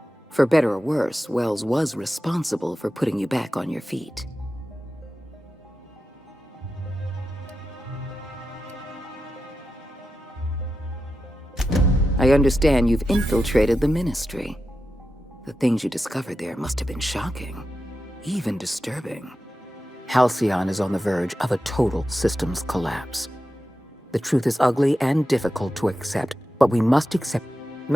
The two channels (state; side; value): normal; both; correlation 0.91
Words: For better or worse, Wells was responsible for putting you back on your feet. I understand you've infiltrated the Ministry. The things you discovered there must have been shocking, even disturbing. Halcyon is on the verge of a total systems collapse. The truth is ugly and difficult to accept, but we must accept.